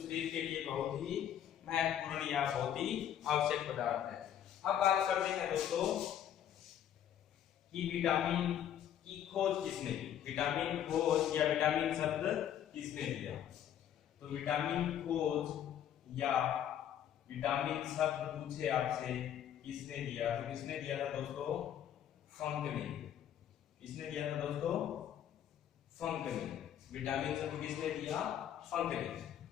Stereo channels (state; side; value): quieter; right; 10.2 dB